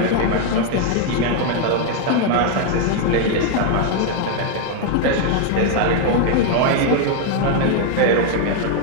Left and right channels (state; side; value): different; both; correlation 0.00